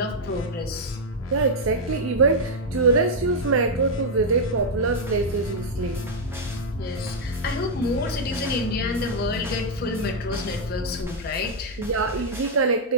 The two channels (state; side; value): normal; both; correlation -0.01